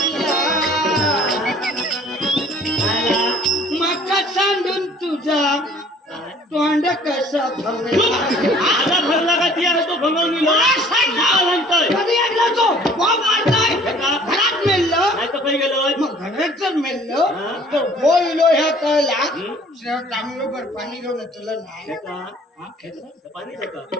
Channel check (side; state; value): both; normal; correlation 0.53